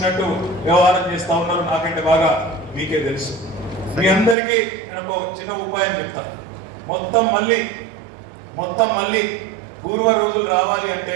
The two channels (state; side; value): drops out; left; at 4.4 s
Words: వ్యవహారం చేస్తా ఉన్నారు. నాకంటే బాగా మీకే తెలుసు. మీ అందరికీ నేను ఒక చిన్న ఉపాయం చెప్తాను. మొత్తం మళ్ళీ పూర్వ రోజులు రావాలి అంటే